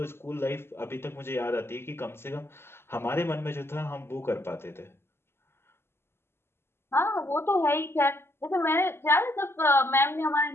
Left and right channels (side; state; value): right; late; 0.12 ms